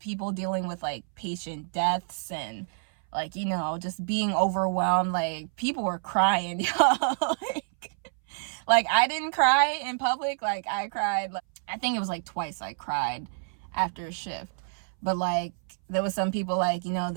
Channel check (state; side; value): silent; left; 59 dB below the other